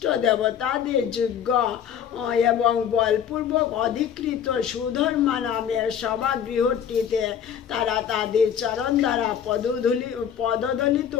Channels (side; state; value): right; quieter; 8.6 dB